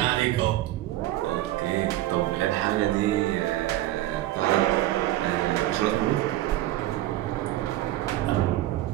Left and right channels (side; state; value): left; quieter; 15.2 dB